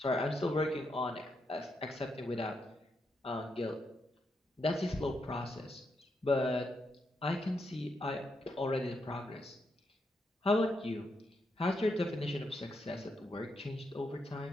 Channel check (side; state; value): both; normal; correlation 0.81